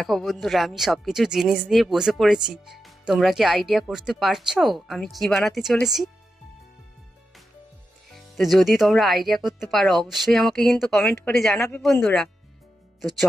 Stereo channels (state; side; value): normal; both; correlation 0.89